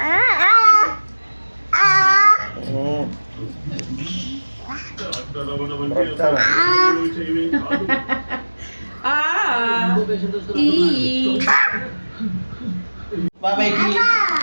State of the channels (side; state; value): both; inverted; correlation -1.00